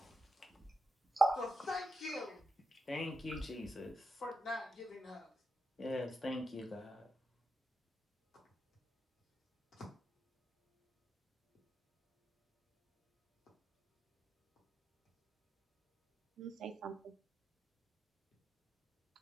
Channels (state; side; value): normal; both; correlation 0.87